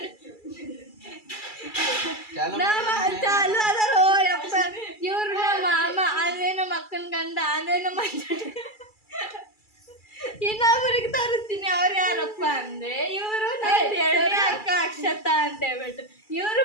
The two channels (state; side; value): late; right; 2.3 ms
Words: ಇವ್ರು ನಮ್ಮ ಮಾಮ ಅಂದ್ರೆ ನಮ್ಮ ಅಕ್ಕನ ಗಂಡ ಅಂದ್ರೆ ನಮ್ಮ ಇನ್ನೊಬ್ಬರಿಗೆ ತೋರಿಸ್ತೀನಿ. ಅವ್ರು ಯಾರಪ್ಪ ಅಂದ್ರೆ ಇವರು ಎರಡನೇ ಅಕ್ಕ ಅಕ್ಷತಾ ಅಂತ ಹೇಳ್ಬಿಟ್ಟು. ಇವರು